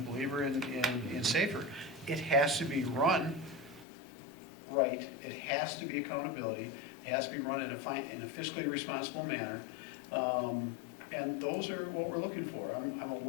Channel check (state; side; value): drops out; right; at 3.9 s